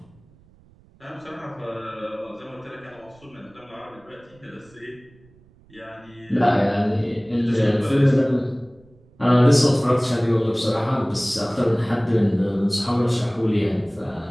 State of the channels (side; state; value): right; noise; rumble, 29 dB below the sound